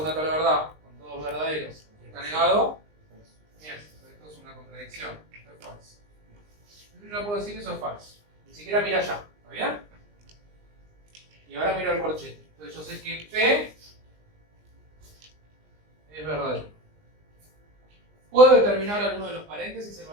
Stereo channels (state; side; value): late; left; 20 ms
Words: una tabla de verdad con todos verdaderos y está negado, bien, esto es una contradicción. Esto es falso. Yo no puedo decir eso es falso. Ni siquiera mira allá. ¿Está bien? Y ahora miro el corchete. Entonces yo sé que P es verdadero. ¿Puedo determinar alguno de los paréntesis el